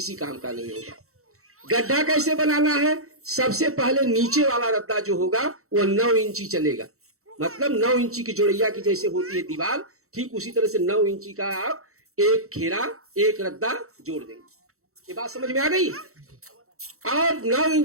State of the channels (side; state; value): left; late; 0.64 ms